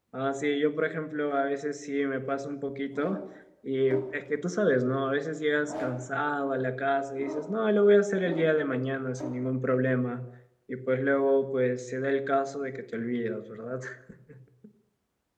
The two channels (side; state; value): both; identical; correlation 1.00